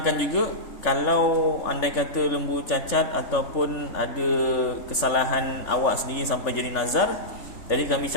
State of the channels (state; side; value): late; right; 3.5 ms